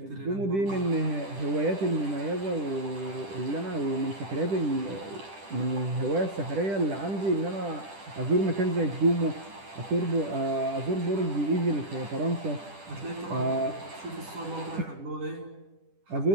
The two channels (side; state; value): left; late; 10 ms